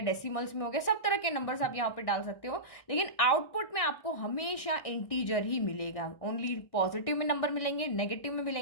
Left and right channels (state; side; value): late; right; 1.6 ms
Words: में हो गया, सब तरह के नंबर्स आप यहाँ पे डाल सकते हो। लेकिन आउटपुट में आपको हमेशा इंटीजर ही मिलेगा। ओनली पॉजिटिव में नंबर मिलेंगे, नेगेटिव में